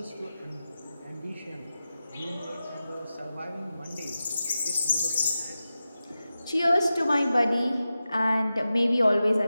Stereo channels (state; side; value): inverted; both; correlation -0.93